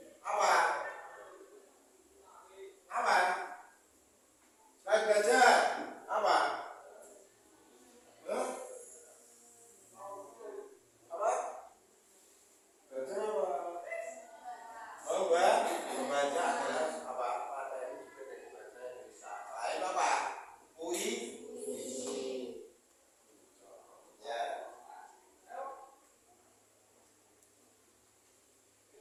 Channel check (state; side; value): identical; both; correlation 1.00